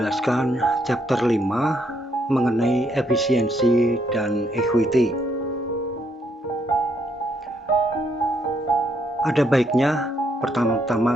chapter 5 mengenai efisiensi dan equity. Ada baiknya pertama-tama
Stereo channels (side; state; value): both; normal; correlation 0.73